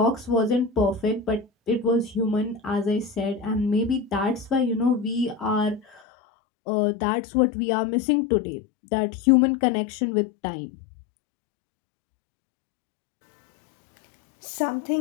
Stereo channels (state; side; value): drops out; right; at 6.0 s